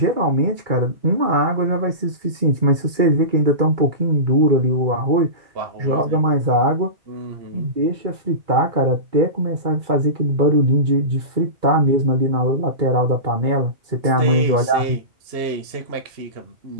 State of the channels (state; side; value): late; left; 2.3 ms